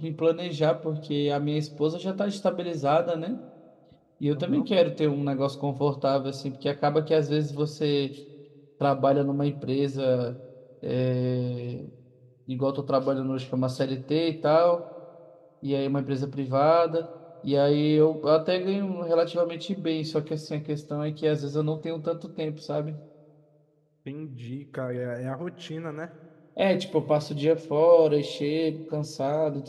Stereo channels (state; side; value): identical; both; correlation 1.00